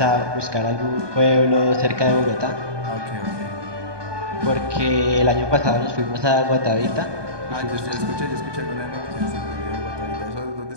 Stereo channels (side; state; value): left; late; 1.2 ms